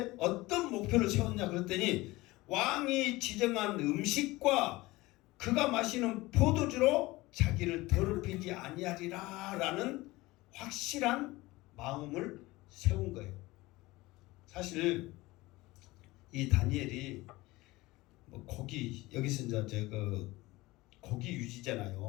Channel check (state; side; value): quieter; right; 20.2 dB